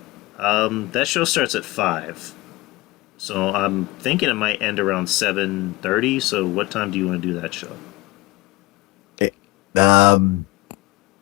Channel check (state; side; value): quieter; right; 19.7 dB